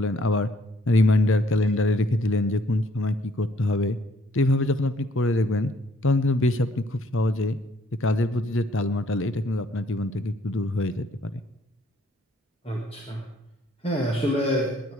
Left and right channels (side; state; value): both; normal; correlation 0.64